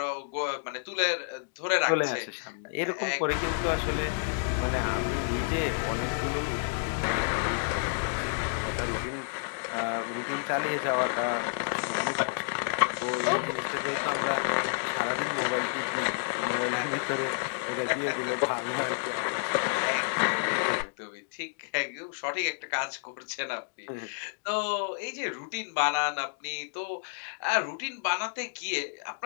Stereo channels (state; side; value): silent; right; digital silence